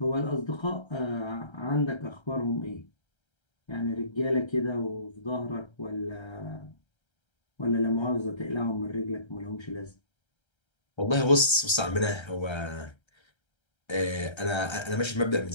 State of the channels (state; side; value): late; right; 1.3 ms